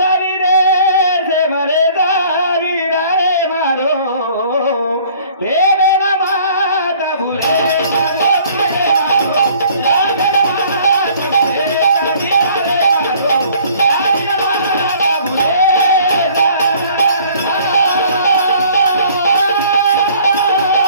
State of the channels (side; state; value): both; inverted; correlation -0.55